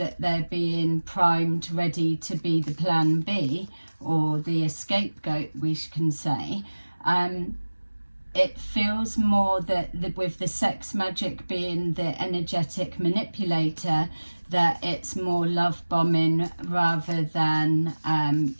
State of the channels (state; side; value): inverted; both; correlation -1.00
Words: they're being primed, ready to be the plan B or the scapegoat, we can say. It feels more that with the sex magic being the energetic manipulator, that it's more love bombing rather than